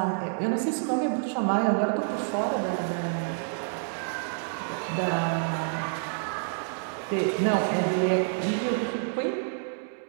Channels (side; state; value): left; silent; digital silence